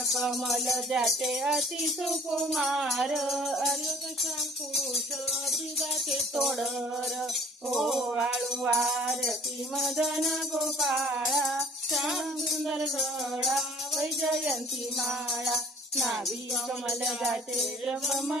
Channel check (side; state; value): both; normal; correlation 0.52